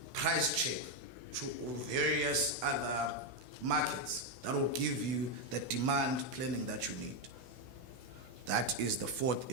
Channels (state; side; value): late; left; 16 ms